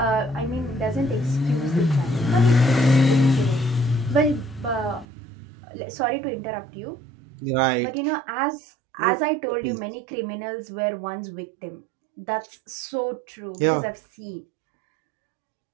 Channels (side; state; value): left; drops out; at 5.1 s